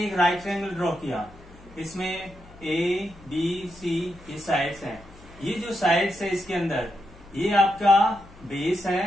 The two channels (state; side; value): noise; left; hum, 22 dB below the sound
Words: एक राइट ट्रायंगल ड्रॉ किया, इसमें ए बी सी ये साइड्स हैं। ये जो साइड्स है इसके अंदर ये आपका बेस